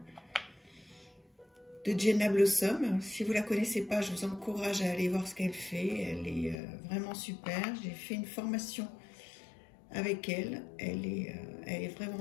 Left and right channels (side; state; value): right; drops out; at 6.6 s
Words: Jenna Blossom. Si vous ne la connaissez pas, je vous encourage à aller voir ce qu'elle fait. Elle est vraiment super. J'ai fait une formation avec elle. Elle est